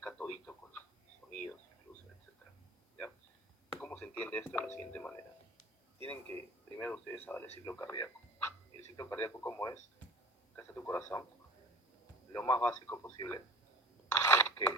todito con sonidos, incluso, etcétera. ¿Ya? ¿Cómo se entiende esto de la siguiente manera? Tienen que primero ustedes saber el ciclo cardíaco. ¿El ciclo cardíaco cómo es? Acá está tu corazón. Lo más básico posible es que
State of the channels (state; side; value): normal; both; correlation 0.40